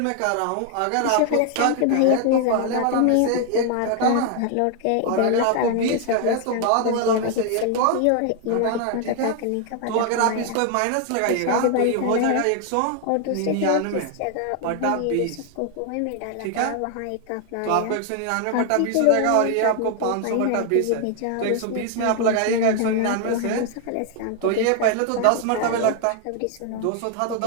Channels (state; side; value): different; both; correlation 0.00